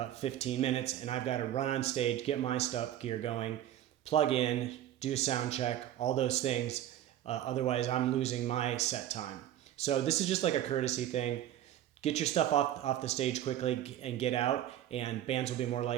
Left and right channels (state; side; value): quieter; left; 12.0 dB